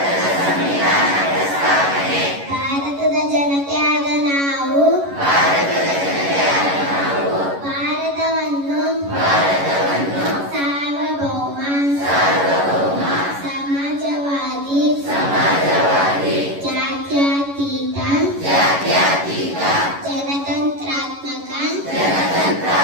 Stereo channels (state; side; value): late; left; 11 ms